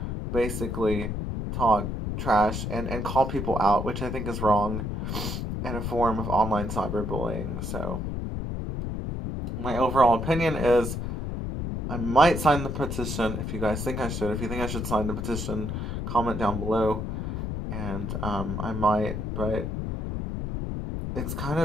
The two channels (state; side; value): noise; left; rumble, 3 dB below the sound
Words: basically talk trash and call people out, which I think is wrong and a form of online cyberbullying. So, my overall opinion is I might sign the petition if you guys think I should. If you think I should sign the petition, comment down below, and I might, but it's kind